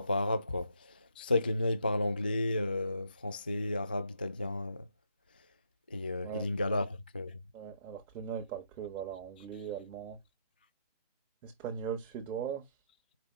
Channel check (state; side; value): inverted; both; correlation -0.75